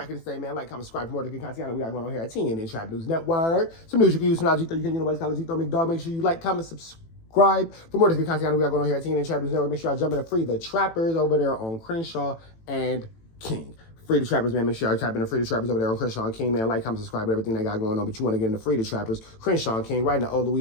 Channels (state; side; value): late; right; 18 ms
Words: the same, man. Like, comment, subscribe for more good content. We got going on here at TNN Trap News Network. Some news you can use, some knowledge you can, nobody's calling G-Throw McDog. Make sure you like, comment, subscribe for more good content. We got going on here at TNN Trap News Network. Make sure y'all jump in to free the trappers over there on Crenshaw and King. Free the Trappers, man. Make sure y'all type in the Free the Trappers over there on Crenshaw and King, man. Like, comment, subscribe to everything they got going on. But you want to get into Free the Trappers, Crenshaw and King, right in the old